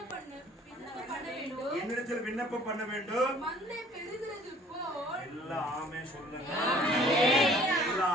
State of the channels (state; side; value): normal; both; correlation 0.54